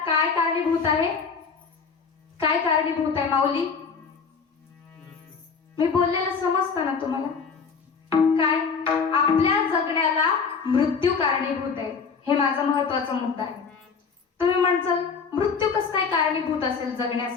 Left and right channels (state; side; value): quieter; right; 5.6 dB